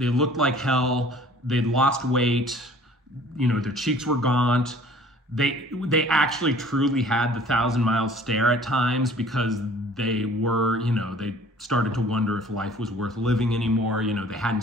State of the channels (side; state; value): both; normal; correlation 0.51